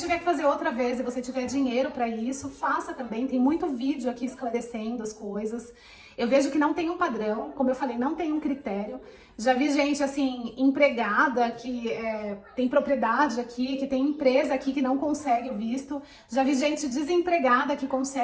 tiver que fazer outra vez e você tiver dinheiro pra isso, faça também. Tem muito vídeo aqui esclarecendo as coisas. Eu vejo que não tem um padrão, como eu falei, não tem um critério. Já vi gente, assim, empregada que tem propriedade aqui, que tem empresa aqui que não consegue o visto. Já vi gente desempregada que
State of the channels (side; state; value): both; identical; correlation 1.00